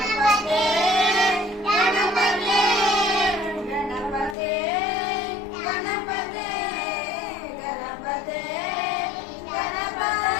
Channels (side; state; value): right; drops out; at 4.4 s